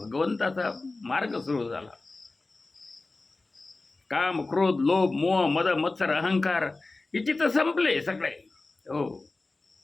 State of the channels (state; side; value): quieter; right; 3.4 dB